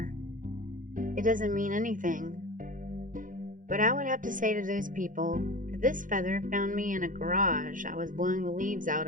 It doesn't mean anything. But I would have to say to those people that this feather found me in a garage I was blowing the leaves out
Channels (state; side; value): late; left; 0.38 ms